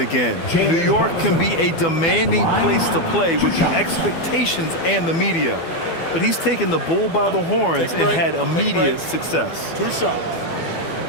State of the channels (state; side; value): late; right; 12 ms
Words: New York can be a demanding place to play with the expectations and the media. But he's taken the bull by the horns and had immediate success. 2 shots.